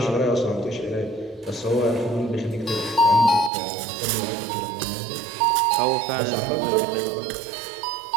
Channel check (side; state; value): left; drops out; at 3.5 s